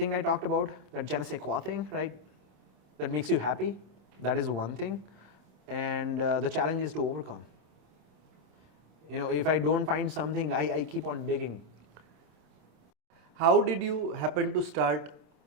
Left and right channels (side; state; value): left; late; 27 ms